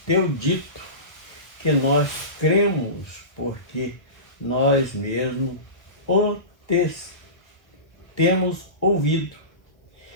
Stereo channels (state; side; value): late; right; 1.1 ms